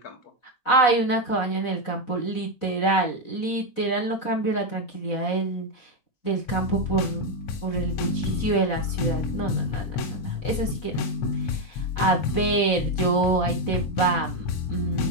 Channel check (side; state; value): right; late; 4.0 ms